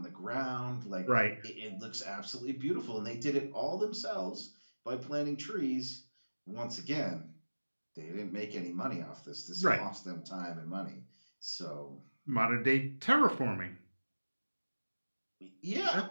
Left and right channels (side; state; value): both; inverted; correlation -1.00